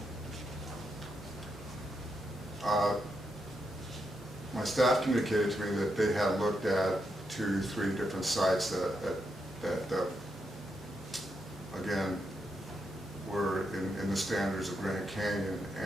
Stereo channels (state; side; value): normal; both; correlation 0.82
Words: My staff communicated to me that they had looked at 2, 3 different sites that again, were in the standards of Grand Canyon,